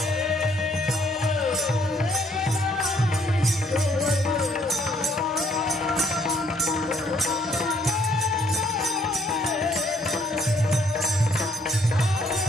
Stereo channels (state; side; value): normal; both; correlation 0.67